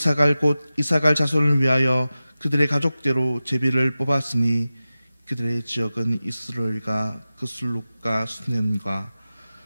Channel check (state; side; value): inverted; both; correlation -0.95